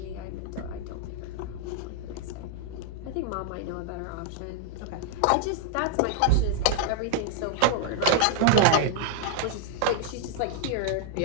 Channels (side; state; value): both; different; correlation -0.01